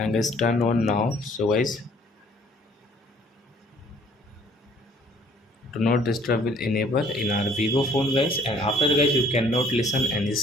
guys turn on now. So guys, do not disturb will enable in our Vivo phone guys, and after that, guys you cannot listen any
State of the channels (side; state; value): both; normal; correlation 0.58